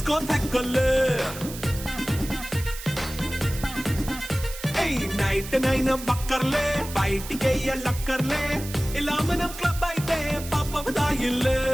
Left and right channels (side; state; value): right; noise; hiss, 12 dB below the sound